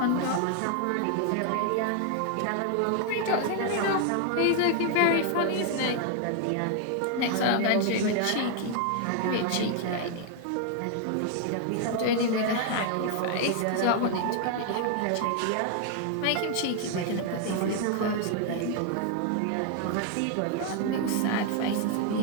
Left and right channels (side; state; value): both; different; correlation 0.00